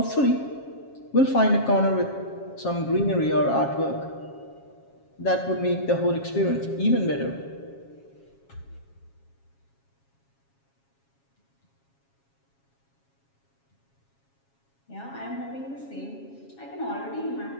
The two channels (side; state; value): right; late; 7.3 ms